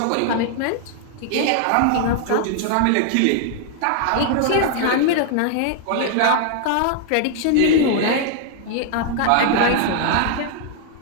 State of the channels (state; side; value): different; both; correlation 0.00